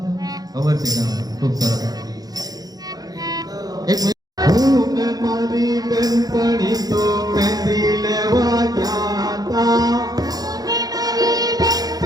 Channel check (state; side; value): late; left; 0.19 ms